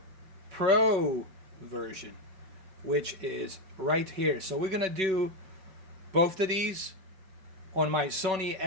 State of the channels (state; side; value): late; left; 5.3 ms